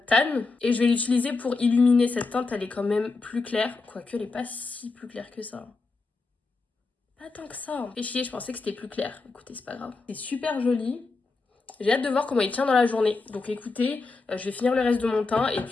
Tan et je vais l'utiliser pour illuminer cette teinte. Elle est quand même plus claire, quoique elle est pas si plus claire que ça. Pas tant que ça. Fait chier, je pensais que c'était plus clair. Écoutez, c'est pas grave. C'est super joli. J'ai hâte de voir comment il tient dans la journée. Donc écoutez, je vais finir le reste de mon teint et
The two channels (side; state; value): right; quieter; 3.9 dB